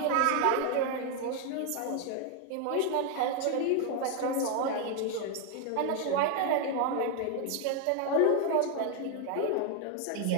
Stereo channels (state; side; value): different; both; correlation 0.01